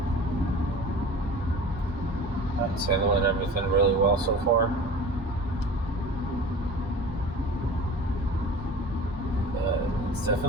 It's handling everything really well so far. It's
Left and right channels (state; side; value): normal; both; correlation 0.39